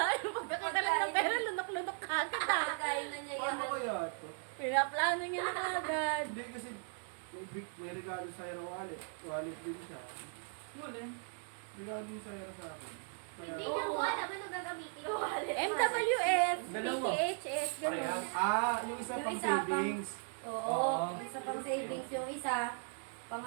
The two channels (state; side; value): silent; left; 53 dB below the other